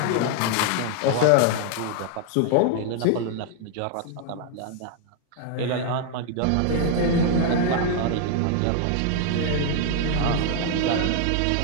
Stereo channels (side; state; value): both; different; correlation 0.00